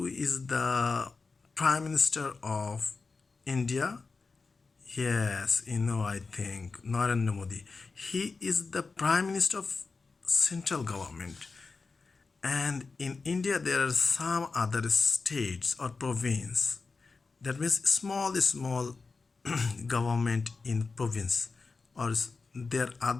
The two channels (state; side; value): quieter; right; 4.3 dB